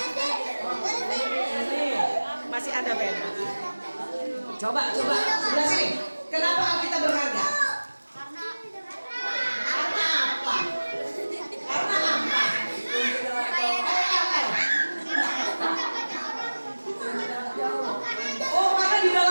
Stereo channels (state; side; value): inverted; both; correlation -1.00